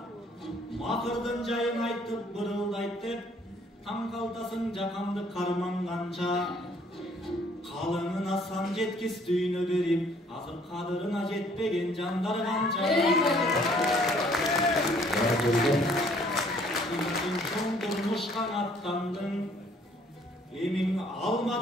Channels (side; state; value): both; normal; correlation 0.61